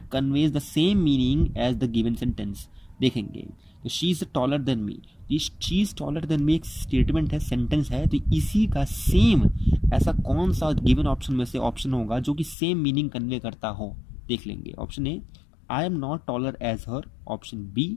conveys the same meaning as the given sentence. देखेंगे तो she is taller than me, she is taller than me एक स्टेटमेंट है, सेंटेंस है, तो इसी का सेम ऐसा कौन सा गिवन ऑप्शन में से ऑप्शन होगा जो कि सेम मीनिंग कन्वे करता हो? देख लेंगे। Option A I am not taller as her, option B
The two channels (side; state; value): right; drops out; at 12.6 s